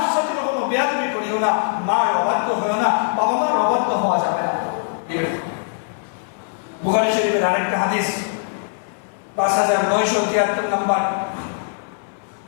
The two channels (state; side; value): silent; right; 60 dB below the other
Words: সাথে কখনো বেয়াদবি করিও না মার অবাধ্য হইও না বাবা মার অবাধ্য হওয়া যাবে না বুখারী শরীফের আরেকটা হাদিস 5973 নম্বর